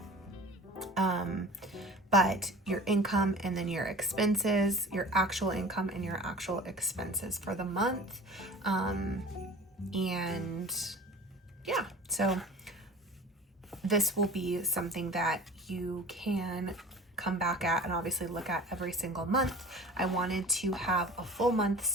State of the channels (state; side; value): normal; both; correlation 0.41